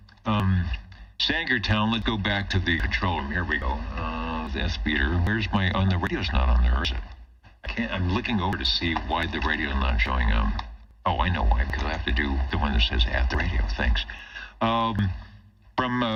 Sangertown, let's go back to the control room. Here we go. The speeder. Where's my... Oh, the radio's not on there, is it? I'm looking over to see why the radio's not showing up. Oh, I know why, because I have to do the one that says at the radio. Thanks. From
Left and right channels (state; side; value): identical; both; correlation 1.00